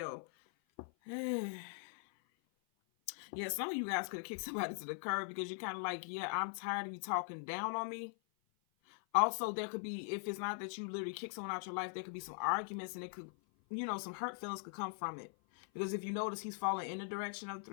Yeah, some of you guys could have kicked somebody to the curb because you're kind of like, yeah, I'm tired of you talking down on me. Also, there could be, if it's not that you literally kick someone out your life, there could be some arguments, and it could, you know, some hurt feelings could come from it. Because if you notice, he's falling in the direction of the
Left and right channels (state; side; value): silent; right; 50 dB below the other